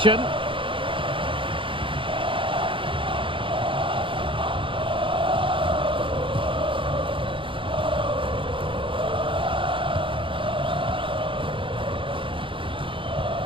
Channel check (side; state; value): left; late; 0.25 ms